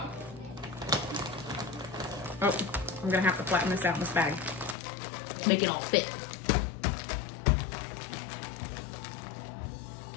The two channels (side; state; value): right; drops out; at 4.8 s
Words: Oh, I'm gonna have to flatten this out in this bag. Make it all fit.